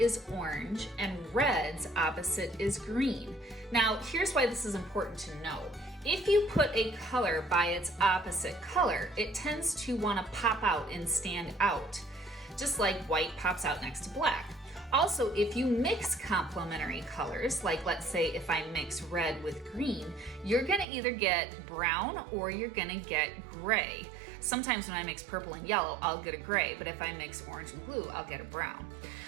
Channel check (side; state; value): left; drops out; at 20.9 s